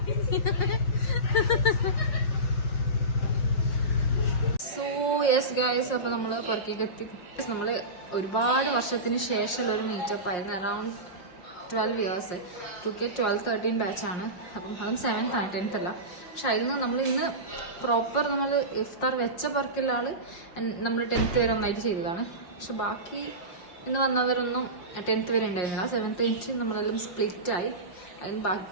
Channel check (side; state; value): right; late; 5.7 ms